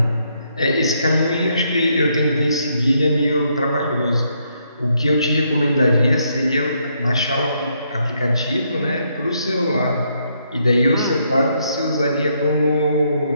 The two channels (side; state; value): both; inverted; correlation -0.75